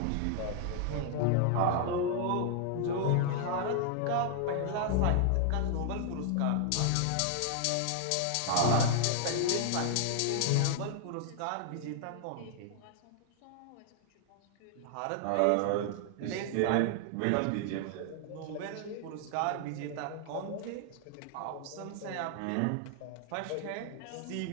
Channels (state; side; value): different; both; correlation 0.00